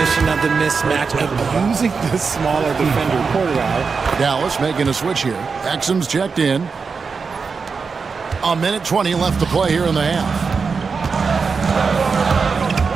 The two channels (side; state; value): left; quieter; 5.1 dB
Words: of the mismatch, abusing the smaller defender quarterback. Dallas making a switch here. Exum's checked in. A minute 20 left to play here in the half.